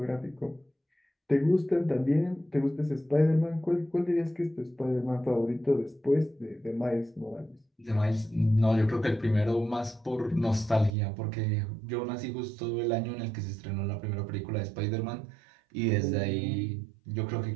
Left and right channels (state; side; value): drops out; left; at 10.9 s